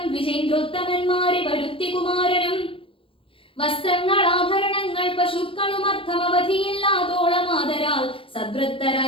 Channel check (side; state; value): right; late; 0.26 ms